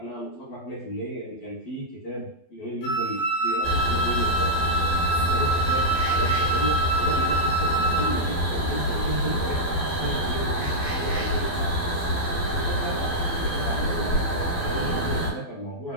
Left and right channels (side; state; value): right; late; 12 ms